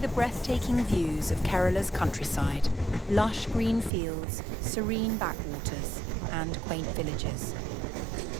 breathtaking views of Kerala's countryside, lush green fields, serene backwaters, and quaint villages.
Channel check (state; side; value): drops out; left; at 3.9 s